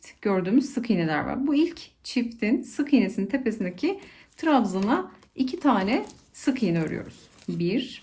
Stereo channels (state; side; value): identical; both; correlation 1.00